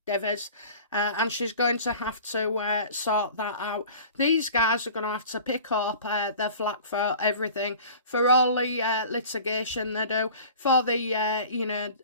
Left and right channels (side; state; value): both; inverted; correlation -0.43